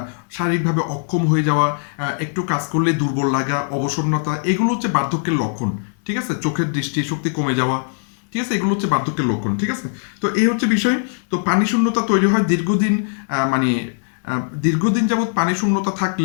শারীরিকভাবে অক্ষম হয়ে যাওয়া, একটু কাজ করলে দুর্বল লাগা, অবসন্নতা, এগুলো হচ্ছে বার্ধক্যের লক্ষণ। ঠিক আছে, চোখের দৃষ্টি শক্তি কমে যাওয়া, ঠিক আছে, এগুলো হচ্ছে বার্ধক্যের লক্ষণ। ঠিক আছে, তো এই হচ্ছে বিষয়। তো পানি শূন্যতা তৈরি হয় দীর্ঘদিন, মানে দীর্ঘদিন যাবৎ পানি শূন্যতা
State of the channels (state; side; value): silent; right; 66 dB below the other